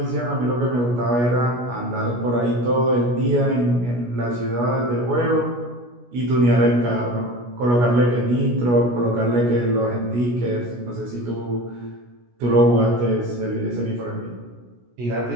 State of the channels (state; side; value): late; left; 16 ms